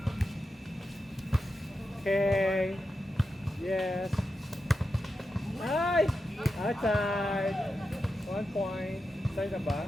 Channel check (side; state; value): both; normal; correlation 0.89